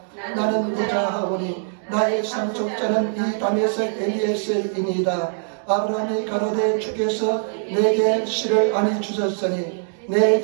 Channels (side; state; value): left; silent; digital silence